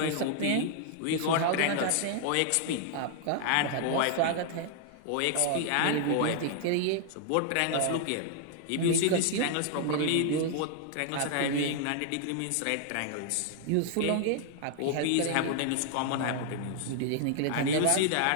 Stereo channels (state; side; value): different; both; correlation 0.00